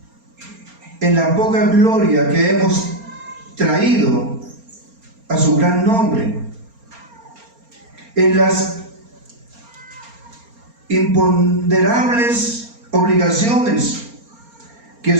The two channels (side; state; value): left; late; 4.3 ms